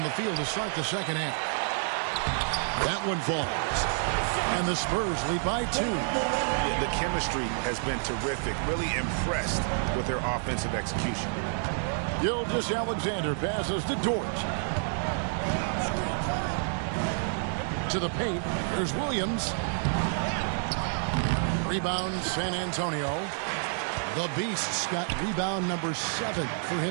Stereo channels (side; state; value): left; silent; 59 dB below the other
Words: the field to start the second half. That one falls. And the Spurs lead by 2. Yeah, the chemistry has been terrific. Really impressed with their offensive execution. Gilgeous-Alexander passes to Dort. To the paint. There's Williams. Rebound San Antonio. The Beasts got rebound number 7 for